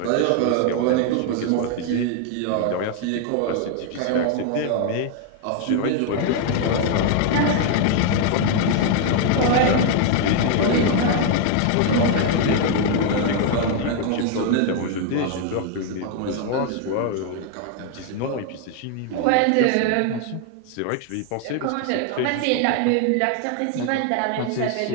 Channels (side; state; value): both; different; correlation 0.00